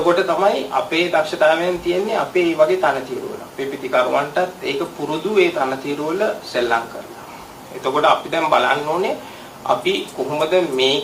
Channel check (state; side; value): identical; both; correlation 1.00